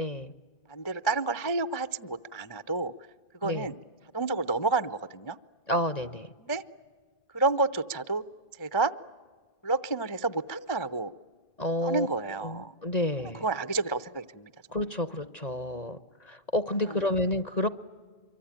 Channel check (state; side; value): late; right; 1.3 ms